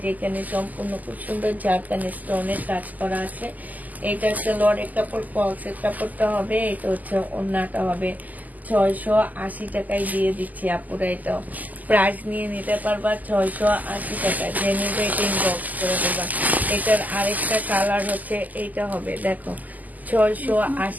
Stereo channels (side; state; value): left; late; 0.081 ms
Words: যেখানে সম্পূর্ণ খুব সুন্দর জারকানি স্টোনের কাজ করা আছে। এটা সালোয়ারের কাপড়, ফলসের কাপড়টা হবে। এটা হচ্ছে ওড়নাটা হবে। 680 টাকায় দিয়ে দিচ্ছি আপুরা। এটাও প্রাইস নিয়ে নিতে পারবা 680 টাকা। যে নিবে এটা ইনবক্স করে দেবা। এটার আরেকটা কালার হচ্ছে এইটা হবে, দেখো